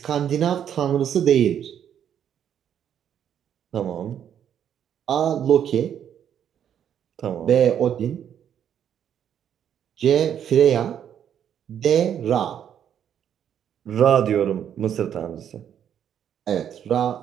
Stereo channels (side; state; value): left; quieter; 9.3 dB